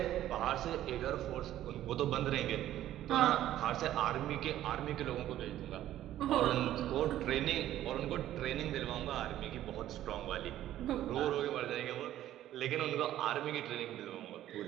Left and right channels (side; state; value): left; quieter; 12.9 dB